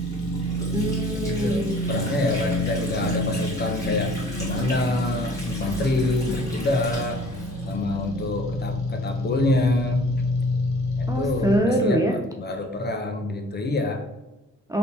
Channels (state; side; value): normal; both; correlation 0.51